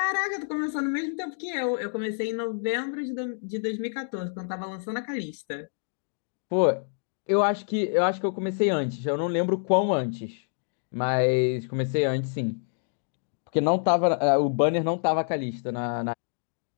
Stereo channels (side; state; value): right; silent; digital silence